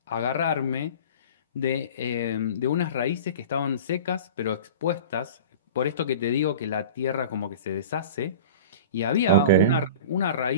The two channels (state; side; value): inverted; both; correlation -0.37